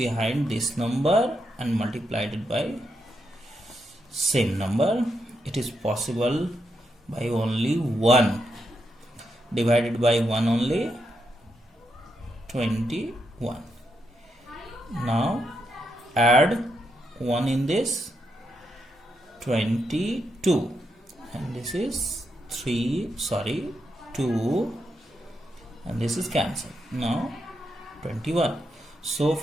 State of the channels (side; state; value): both; normal; correlation 0.82